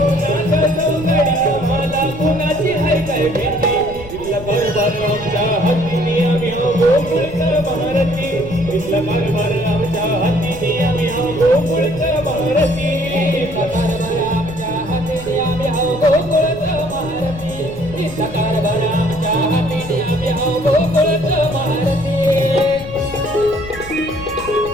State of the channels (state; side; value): noise; left; rumble, 14 dB below the sound